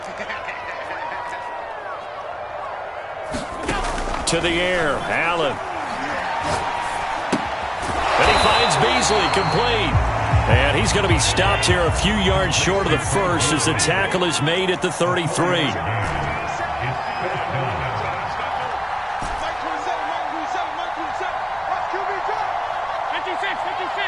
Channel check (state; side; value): identical; both; correlation 1.00